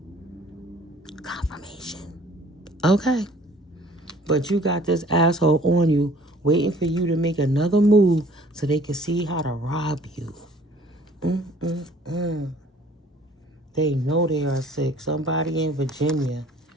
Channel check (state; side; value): normal; both; correlation 0.53